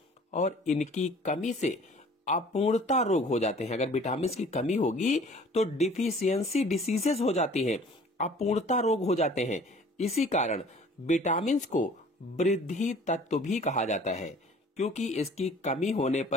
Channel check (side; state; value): both; normal; correlation 0.50